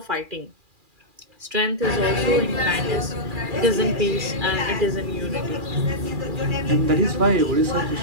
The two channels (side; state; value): left; late; 2.4 ms